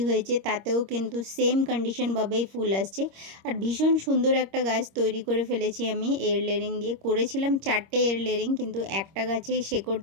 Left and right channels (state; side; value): late; left; 26 ms